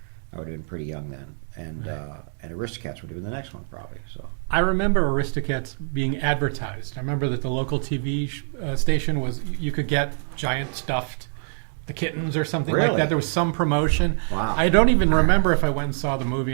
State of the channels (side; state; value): left; silent; 56 dB below the other